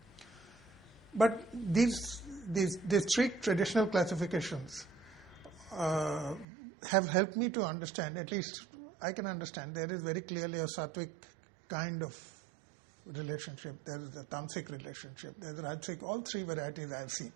But these 3 traditional classifications have helped me to understand, at least I can understand, there is very clearly a sattvic kind of relationship, there is a tamasic relationship, there is a rajasic, all 3 varieties I have seen.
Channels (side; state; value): left; drops out; at 6.5 s